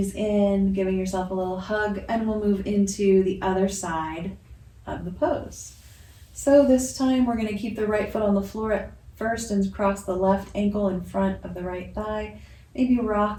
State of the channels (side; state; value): both; identical; correlation 1.00